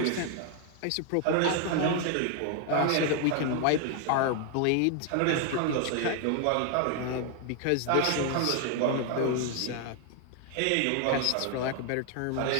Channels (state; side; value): different; both; correlation 0.00